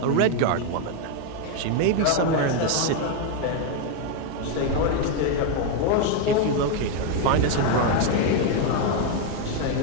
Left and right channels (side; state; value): both; different; correlation 0.01